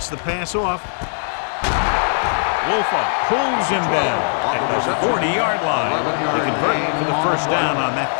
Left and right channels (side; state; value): right; silent; digital silence